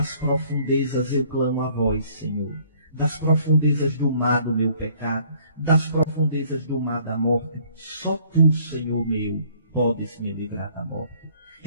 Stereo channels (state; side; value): inverted; both; correlation -0.59